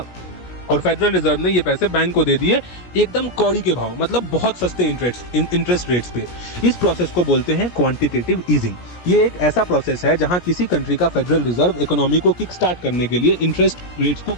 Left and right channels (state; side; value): late; right; 17 ms